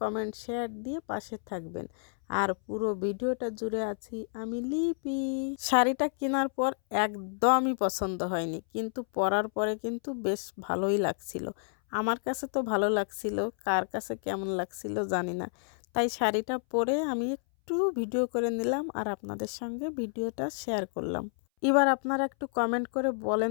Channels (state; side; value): silent; right; 58 dB below the other